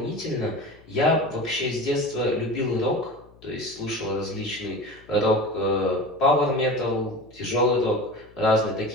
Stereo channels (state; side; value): noise; left; hum, 26 dB below the sound